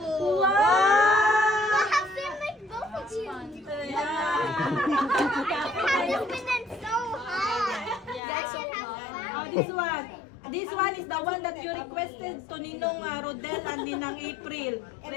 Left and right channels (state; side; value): drops out; right; at 8.2 s